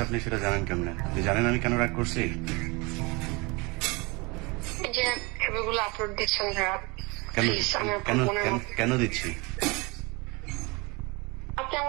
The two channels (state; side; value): quieter; left; 26.8 dB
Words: আপনি সেটা জানেন কেমনে? আপনি জানেন আমি কেন রাগ করছি? এই যে ছবিগুলো আপলোড দিচ্ছেন ভাইয়া, কেন দিচ্ছি? আপনি